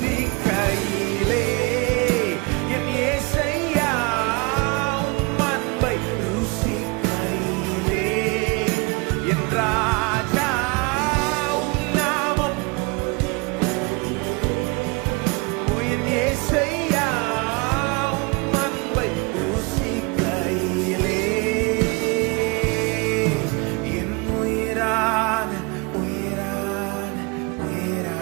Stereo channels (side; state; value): left; quieter; 28.7 dB